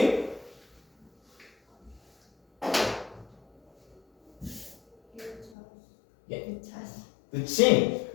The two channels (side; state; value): right; drops out; at 5.6 s